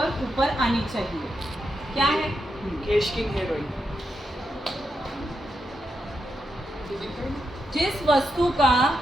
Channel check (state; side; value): normal; both; correlation 0.85